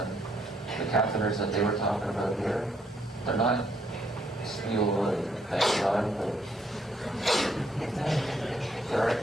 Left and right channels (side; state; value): both; normal; correlation 0.71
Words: The catheters that they were talking about here, they're not steel, thank God, but